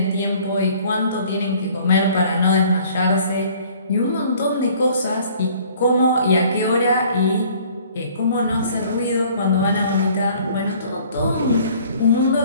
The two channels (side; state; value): both; inverted; correlation -0.54